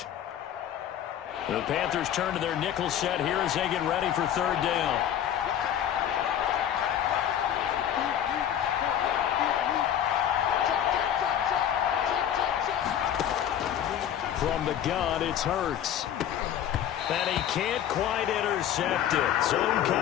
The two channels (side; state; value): right; quieter; 10.3 dB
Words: The Panthers turn to their nickel set here as they get ready for third down. From the gun, it's Hurts. And he can't quite intercept it. Zone